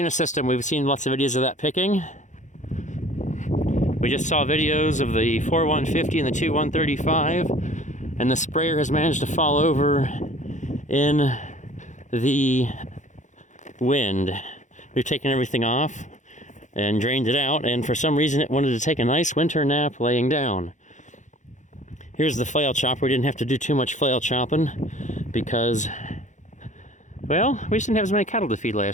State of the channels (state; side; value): late; right; 0.35 ms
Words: we've seen lots of videos of that picking. We just saw videos of the 4150 and the 2135, and the sprayer has managed to fall over in the wind. We've taken everything off and drained it out, and for some reason it wanted to take a nice winter nap laying down. Here's the flail chopper. We didn't have to do too much flail chopping because, well, we just didn't have as many cattle to feed